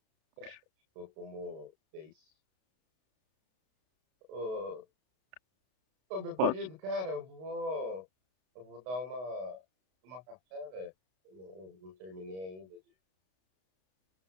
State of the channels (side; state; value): left; late; 32 ms